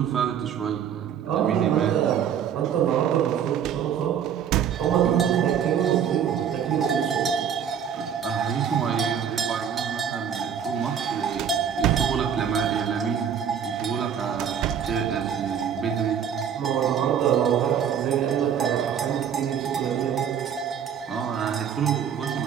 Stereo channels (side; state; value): left; quieter; 8.4 dB